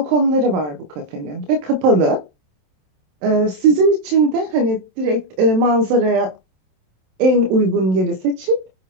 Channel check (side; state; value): left; late; 27 ms